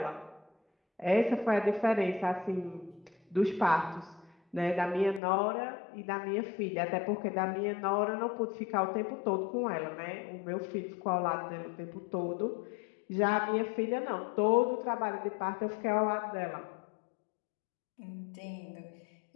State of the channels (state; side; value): drops out; right; at 5.2 s